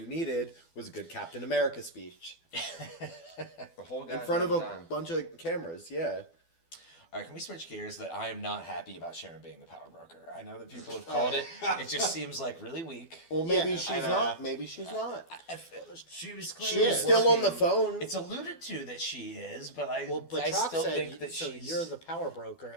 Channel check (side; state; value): right; late; 12 ms